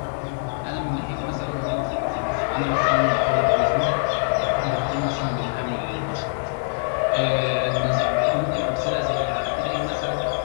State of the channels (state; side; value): silent; right; 63 dB below the other